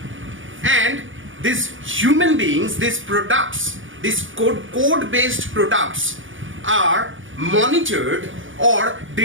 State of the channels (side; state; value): left; late; 0.57 ms